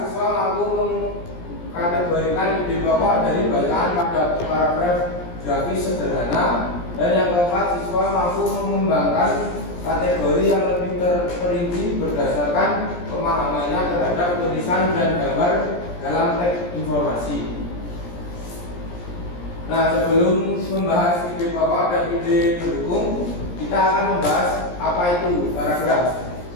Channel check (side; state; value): right; late; 17 ms